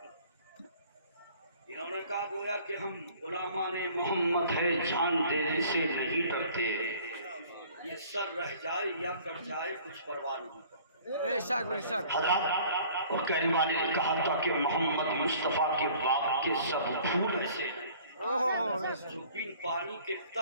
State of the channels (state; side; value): inverted; both; correlation -0.52